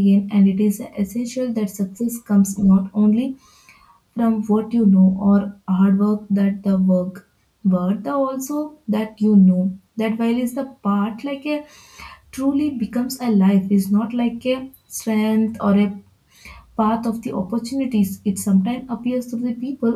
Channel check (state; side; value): identical; both; correlation 1.00